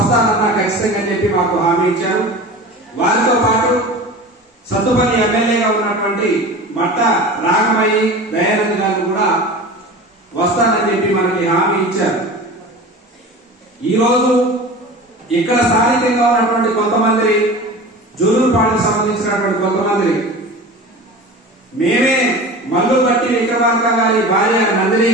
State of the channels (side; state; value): both; normal; correlation 0.35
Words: ఖచ్చితంగా చెప్పి మాకు హామీ ఇచ్చారు. వారితో పాటు సత్తుపల్లి ఎమ్మెల్యేగా ఉన్నటువంటి మట్ట రాగమయ్యి దయానంద్ గారు కూడా వస్తానని చెప్పి మనకి హామీ ఇచ్చారు. ఈరోజు ఇక్కడ స్థానికంగా ఉన్నటువంటి కొంతమంది జుల్లూరుపాడుకు సంబంధించినటువంటి కొంతమంది మేమే మల్లు బట్టి విక్రమార్క గారి భార్య నందిని